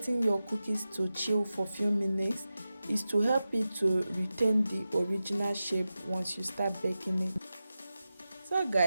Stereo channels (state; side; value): inverted; both; correlation -0.93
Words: your cookies to chill for few minutes is to help it to retain the original shape once you start baking it. So